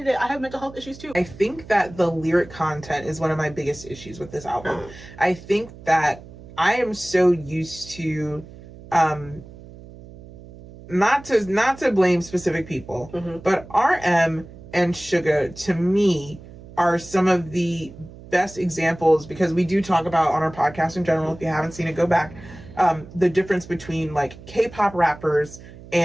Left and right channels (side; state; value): right; noise; hum, 18 dB below the sound